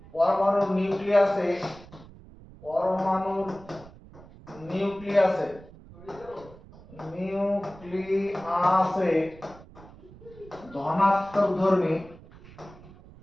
পরমাণুর নিউক্লিয়াসে পরমাণুর নিউক্লিয়াসে নিউক্লিয়াসে ধনাত্মক ধর্মী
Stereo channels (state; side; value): noise; right; rumble, 20 dB below the sound